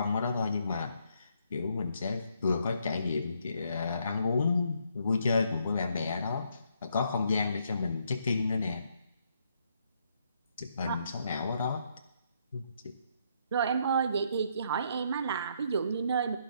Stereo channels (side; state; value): both; inverted; correlation -0.73